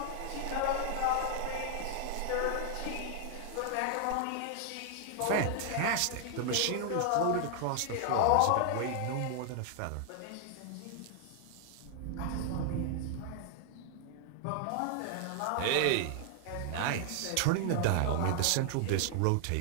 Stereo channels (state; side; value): different; both; correlation 0.00